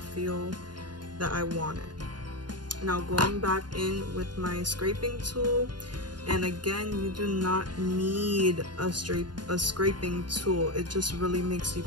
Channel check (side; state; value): left; late; 0.70 ms